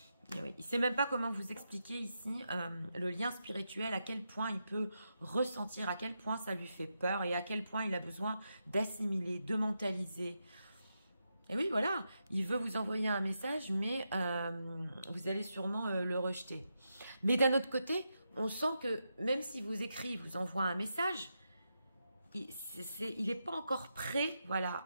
oui, il ne sait même pas comment vous expliquer ici le lien spirituel, à quel point il peut ressentir, à quel point ça lui fait peur et à quel point il a besoin d'assimiler, de mentaliser. Et oui, voilà, il veut vous envoyer un message, mais vous allez sûrement le rejeter. Mais d'un autre côté, on sent que même si vous écrit, vous envoie un message, il n'est pas encore prêt, voilà,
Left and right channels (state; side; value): inverted; both; correlation -0.86